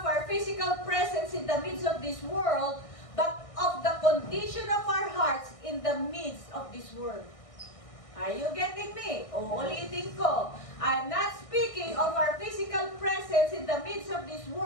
our physical presence in the midst of this world, but of the condition of our hearts in the midst of this world. Are you getting me? Uulitin ko. I'm not speaking of our physical presence in the midst of this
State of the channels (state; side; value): late; right; 1.6 ms